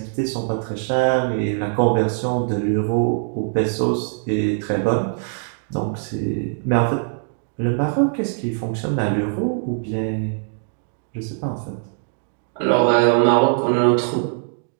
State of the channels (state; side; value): silent; left; digital silence